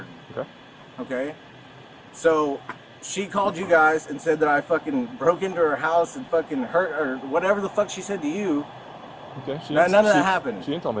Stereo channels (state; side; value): identical; both; correlation 1.00